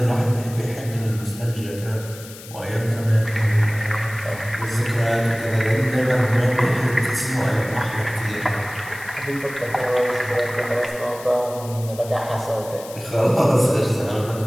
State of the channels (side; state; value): left; noise; hiss, 17 dB below the sound